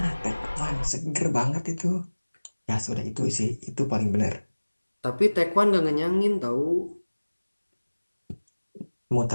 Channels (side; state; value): both; inverted; correlation -1.00